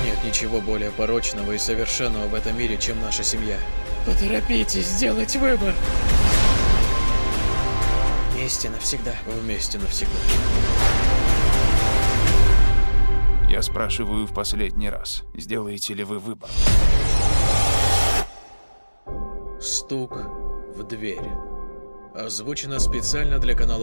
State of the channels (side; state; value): both; inverted; correlation -1.00